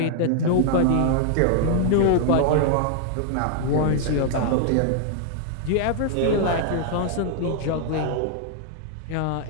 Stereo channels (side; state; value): both; different; correlation -0.01